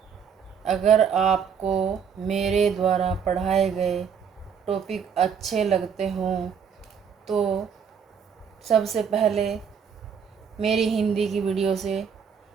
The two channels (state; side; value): quieter; left; 7.1 dB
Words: अगर आपको मेरे द्वारा पढ़ाए गए टॉपिक अच्छे लगते हों तो सबसे पहले मेरी हिंदी की वीडियो से